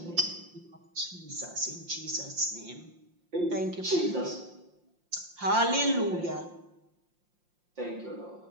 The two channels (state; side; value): late; left; 5.7 ms